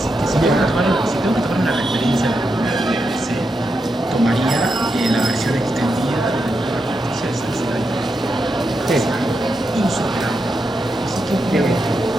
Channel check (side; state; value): both; normal; correlation 0.85